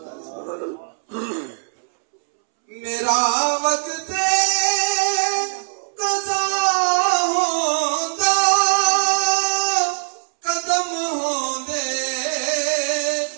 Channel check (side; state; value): left; silent; 65 dB below the other